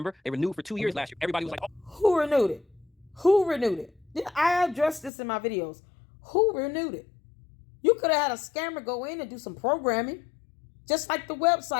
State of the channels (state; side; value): drops out; right; at 5.1 s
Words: They renewed for 2 years last year. Everybody was like, oh. Who renewed it? Who renewed it? I addressed this in my videos. Who renewed it? You could have had a scammer go in and do some programming. Just like the